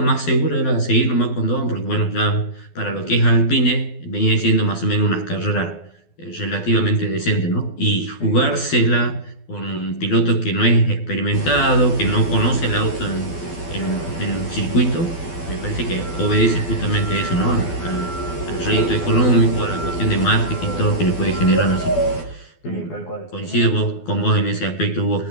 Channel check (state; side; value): late; right; 12 ms